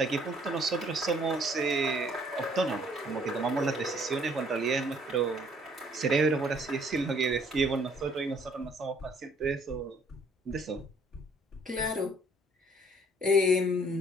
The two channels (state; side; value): normal; both; correlation 0.61